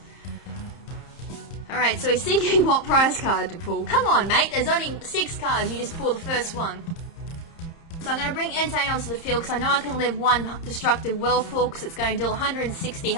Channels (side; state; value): right; late; 30 ms